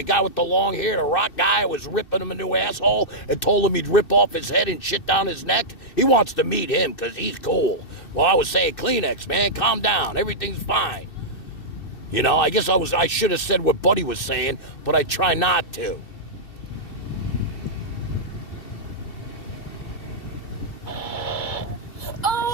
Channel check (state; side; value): late; right; 2.6 ms